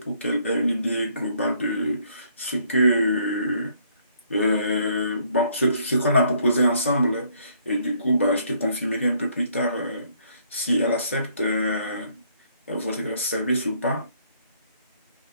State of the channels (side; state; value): both; inverted; correlation -0.66